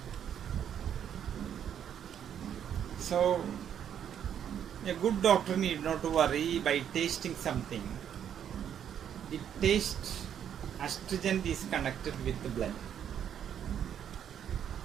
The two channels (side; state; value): left; quieter; 9.2 dB